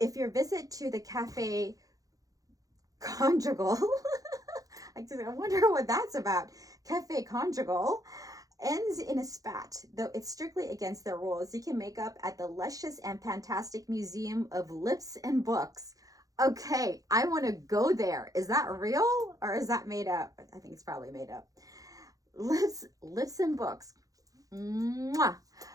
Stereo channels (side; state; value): left; late; 0.17 ms